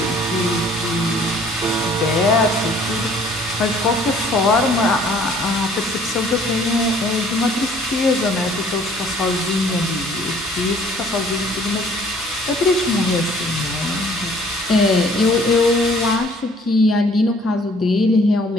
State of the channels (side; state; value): both; normal; correlation 0.57